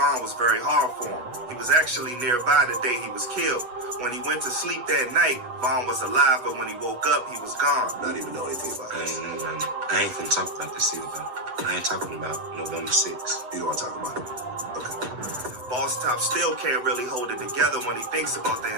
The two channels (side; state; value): left; late; 8.2 ms